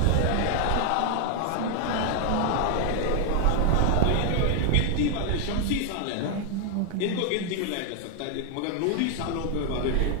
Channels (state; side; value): different; both; correlation 0.00